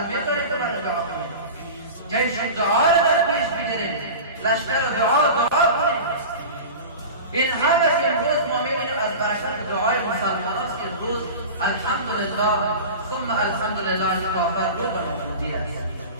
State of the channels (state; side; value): inverted; both; correlation -0.32